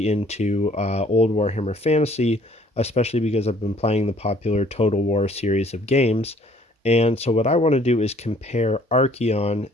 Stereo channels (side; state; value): both; normal; correlation 0.59